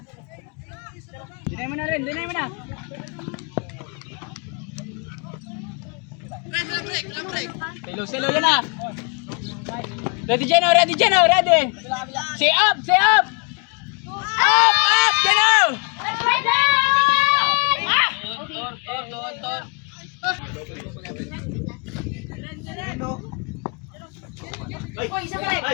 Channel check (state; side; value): quieter; right; 35.1 dB